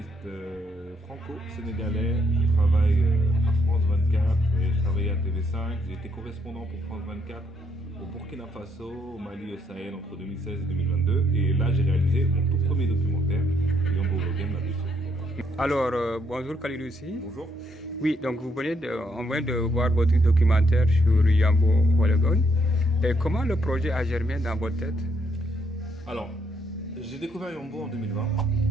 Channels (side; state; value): both; normal; correlation 0.73